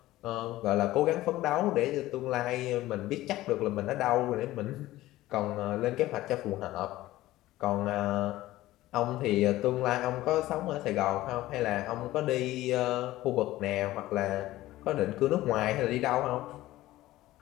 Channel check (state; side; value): quieter; right; 16.3 dB